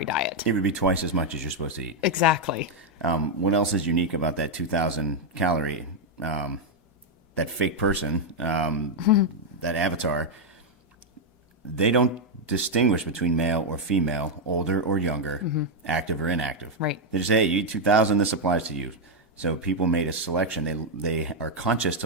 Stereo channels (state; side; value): normal; both; correlation 0.01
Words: diet. It would be twice as much as you're supposed to eat. Exactly. What else is unique about that 2,000 calorie, that fake person, that avatar? They don't distinguish between male or female, older or younger, active or inactive. Right. They just say, hey, you eat 2,000, this applies to you. So people made a selection. They are conscious